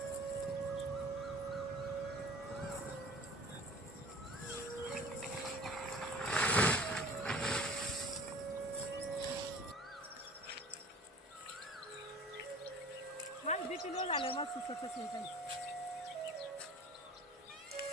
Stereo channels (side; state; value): both; normal; correlation 0.43